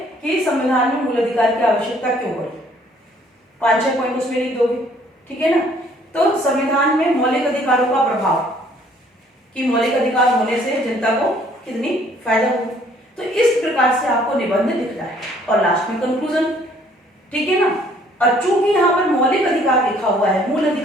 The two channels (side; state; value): both; normal; correlation 0.61